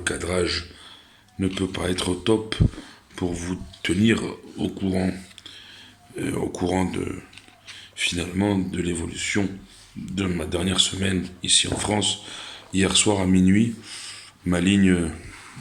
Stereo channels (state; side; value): identical; both; correlation 1.00